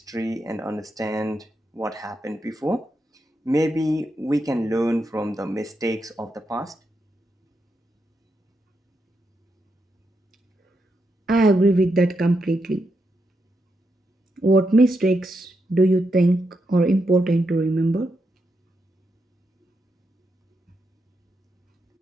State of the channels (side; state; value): both; normal; correlation 0.83